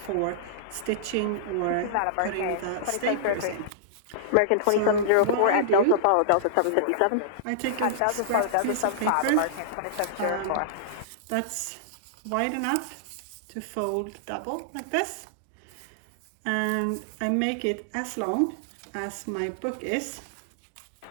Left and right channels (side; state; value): both; different; correlation -0.02